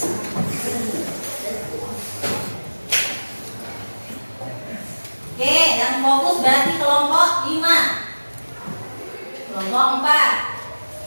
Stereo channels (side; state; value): both; inverted; correlation -1.00